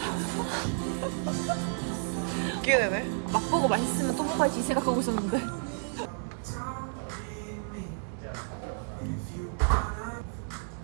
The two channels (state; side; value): silent; left; digital silence